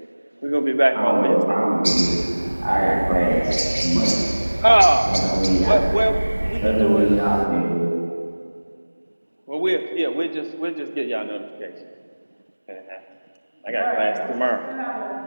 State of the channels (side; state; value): both; inverted; correlation -1.00